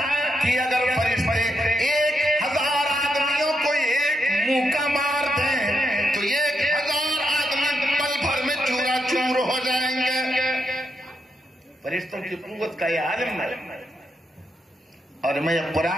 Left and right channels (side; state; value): both; normal; correlation 0.81